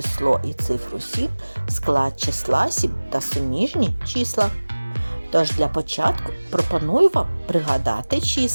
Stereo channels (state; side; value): inverted; both; correlation -1.00